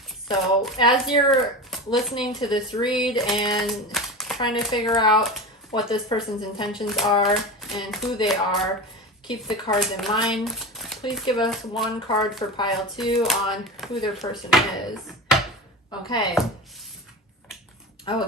So as you're listening to this read and trying to figure out what this person's intentions are and who they are, keep the cards in mind. Please give us one card for pile 2 on who their person is. Okay. Oh,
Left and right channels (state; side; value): normal; both; correlation 0.27